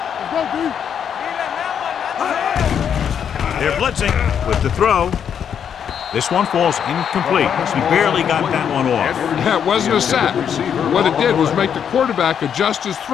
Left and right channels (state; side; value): quieter; right; 8.1 dB